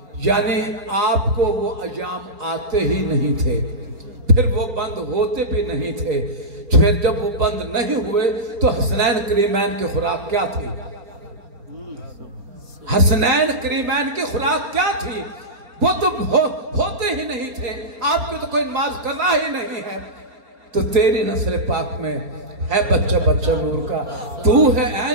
یعنی آپ کو وہ ایام آتے ہی نہیں تھے، پھر وہ بند ہوتے بھی نہیں تھے۔ پھر جب وہ بند نہیں ہوئے تو حسنین کریمین کی خوراک کیا تھی؟ حسنین کریمین کی خوراک کیا تھی؟ وہ تو ہوتے ہی نہیں تھے، آپ کی تو کوئی نماز قضا ہی نہیں ہے۔ تو تیری نسل پاک میں ہے بچہ بچہ نور کا، تو ہے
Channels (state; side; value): late; left; 4.3 ms